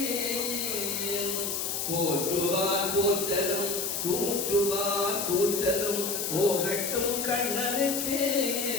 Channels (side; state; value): left; noise; hiss, 2 dB below the sound